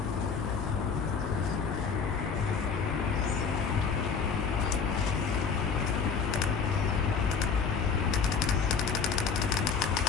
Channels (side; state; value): right; quieter; 5.7 dB